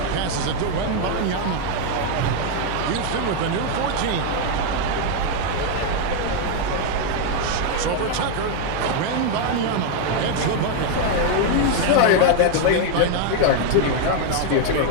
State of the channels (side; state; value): both; different; correlation 0.01